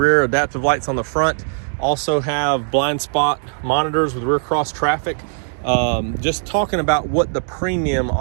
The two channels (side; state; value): left; silent; digital silence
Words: adaptive lights on the front. Also have blind spot monitors with rear cross traffic. Just talking about what the Premium